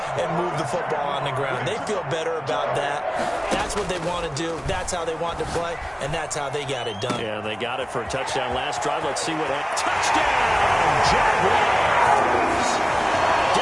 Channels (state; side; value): identical; both; correlation 1.00